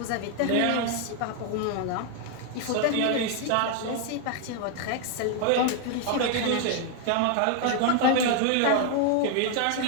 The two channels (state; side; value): different; both; correlation 0.01